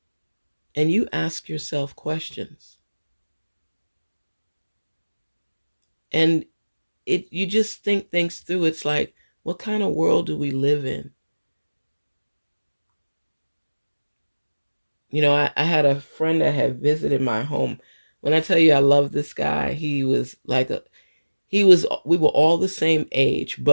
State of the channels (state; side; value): inverted; both; correlation -1.00